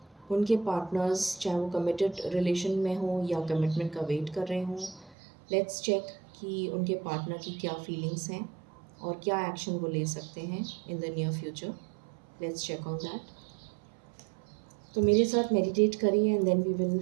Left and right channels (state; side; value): drops out; left; at 5.2 s